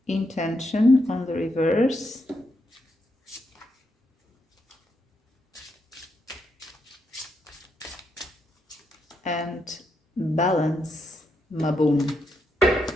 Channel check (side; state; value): both; normal; correlation 0.81